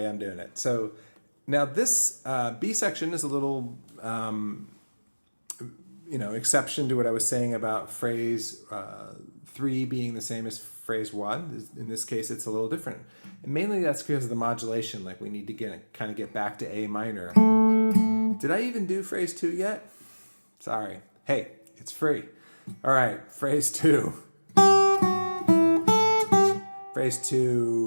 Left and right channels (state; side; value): inverted; both; correlation -1.00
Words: I'm doing it. So now this B section is a little exception to what I was saying about phrase 3 being the same as phrase 1. In this case, it's a little different. And mainly that's because of the modulation. Like we need to get back to A minor. Did I even do phrase 2 yet? Sorry. Hey, it's free. All right, phrase 2. Phrase